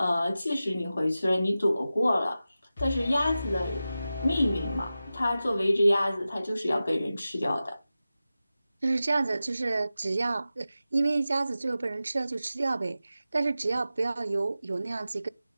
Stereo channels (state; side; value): inverted; both; correlation -0.94